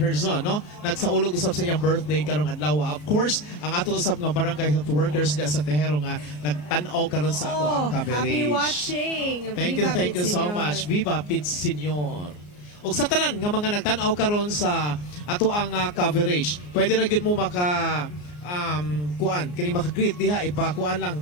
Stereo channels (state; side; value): late; right; 34 ms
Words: no? Nagsaulog usab sa iyang birthday karong adlaw. Of course, ang ato usab nga barangay health workers diya sa Tehero nga nagtan-aw karon sa ato ang coverage. Happy watching. Thank Viva you Pit so Senior. much. Viva Pit Senior. Og sa tanan nga mga nagtan-aw karon sa ato ang coverage, pwede ra gyud mo maka kuan kini maka-greet diha ipakuan lang